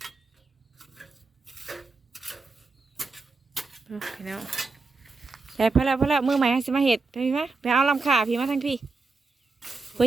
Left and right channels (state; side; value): quieter; left; 4.0 dB